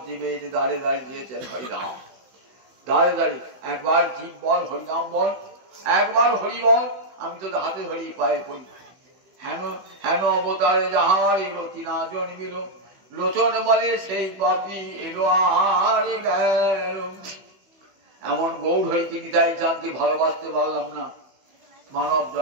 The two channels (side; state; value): left; late; 16 ms